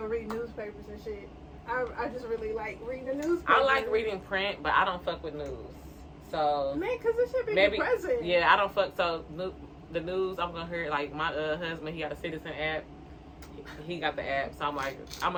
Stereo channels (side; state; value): both; identical; correlation 1.00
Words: reading newspapers and shit. I just really like reading the newspaper. I like reading print, but I don't fuck with news. So man, because it should be depressing. Yeah, I don't fuck. So the news, I'm gonna hear, like, my husband, he got a Citizen app. He got the app, so I'm like, I'm